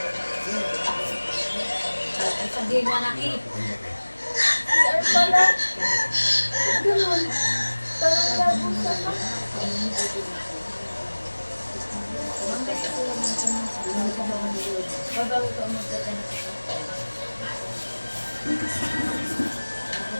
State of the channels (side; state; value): both; inverted; correlation -1.00